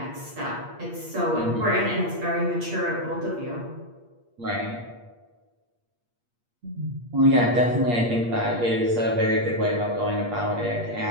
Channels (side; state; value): left; late; 8.5 ms